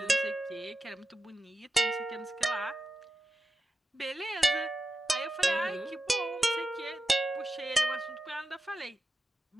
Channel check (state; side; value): normal; both; correlation 0.90